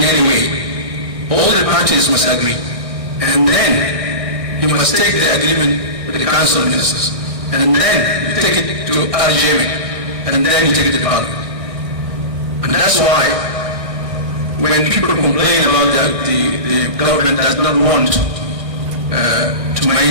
any way, all the parties must agree. And then you must take the agreement with the council of ministers. And then you take it to RGM. And then you take it to parliament. And that's why when people complain about the government does not want to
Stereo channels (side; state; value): left; late; 1.6 ms